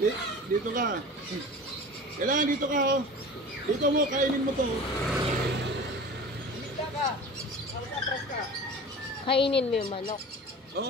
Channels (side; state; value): both; normal; correlation 0.37